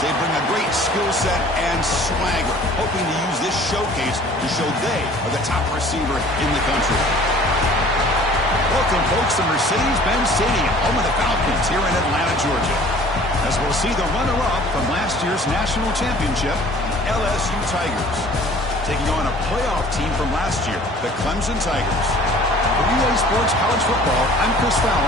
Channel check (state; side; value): normal; both; correlation 0.50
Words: They bring a great skill set and swagger, hoping to use this showcase to show they are the top receiver in the country. Welcome, folks, to Mercedes-Benz Stadium, home of the Falcons here in Atlanta, Georgia. As we'll see the runner-up from last year's national championship, LSU Tigers, taking on a playoff team from last year, the Clemson Tigers. For UA Sports College Football, I'm Chris